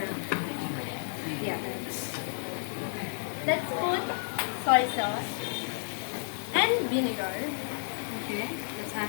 Let's put soy sauce and vinegar. Okay, let's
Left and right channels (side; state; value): right; silent; 57 dB below the other